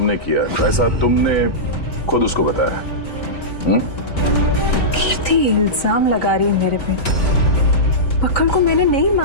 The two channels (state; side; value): late; right; 3.9 ms